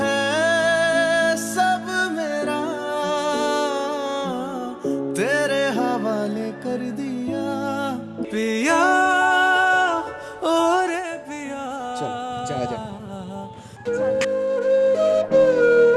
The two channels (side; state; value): both; identical; correlation 1.00